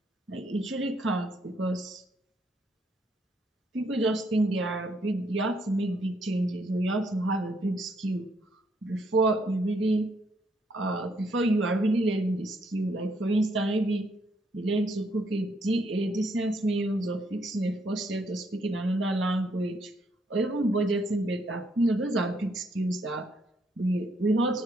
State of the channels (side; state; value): both; normal; correlation 0.72